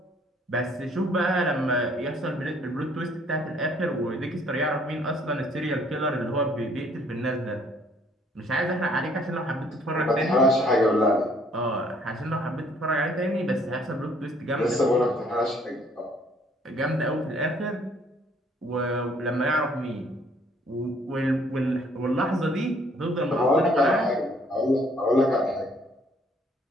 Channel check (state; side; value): normal; both; correlation 0.62